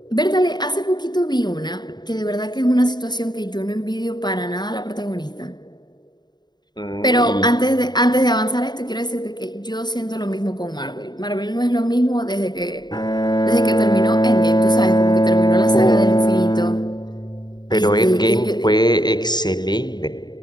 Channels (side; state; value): right; late; 0.21 ms